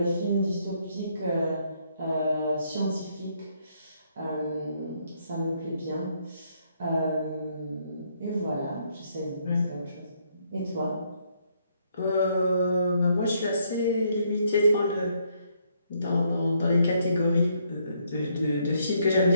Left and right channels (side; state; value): both; inverted; correlation -0.72